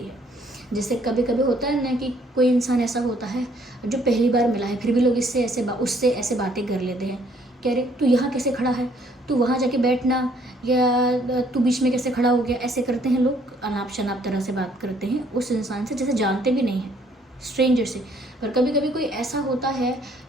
है। जैसे कभी कभी होता है ना कि कोई इंसान ऐसा होता है जो पहली बार मिला है, फिर भी लोग उससे ऐसे बातें कर लेते हैं, कह रहे तू यहाँ कैसे खड़ा है, तू वहाँ जाके बैठना, या तू बीच में कैसे खड़ा हो गया, ऐसे करते हैं लोग, अनाप शनाप तरह से बात करते हैं उस इंसान से जैसे जानते भी नहीं हैं, स्ट्रेंजर से। पर कभी कभी कोई ऐसा होता है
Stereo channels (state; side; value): normal; both; correlation 0.64